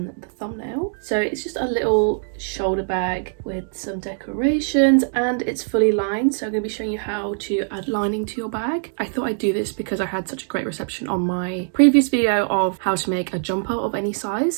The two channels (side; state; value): left; silent; digital silence